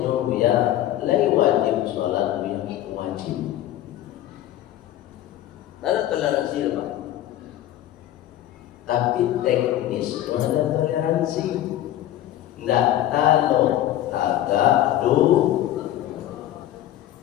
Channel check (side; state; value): right; quieter; 13.1 dB